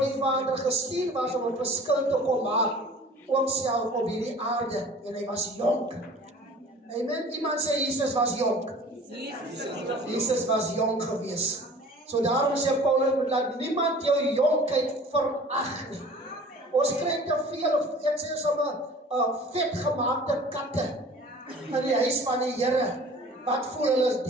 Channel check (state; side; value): normal; both; correlation 0.45